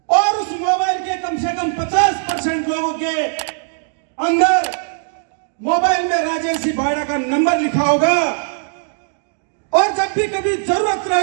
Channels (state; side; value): silent; left; digital silence